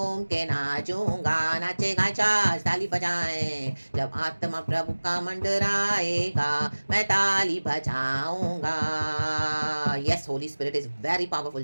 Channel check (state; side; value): inverted; both; correlation -1.00